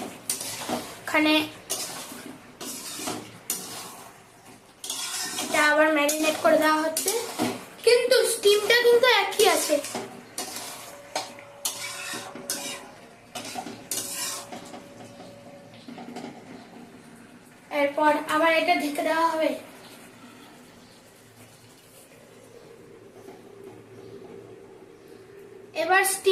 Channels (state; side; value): identical; both; correlation 1.00